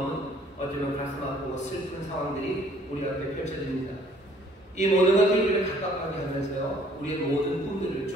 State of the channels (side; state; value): both; normal; correlation 0.58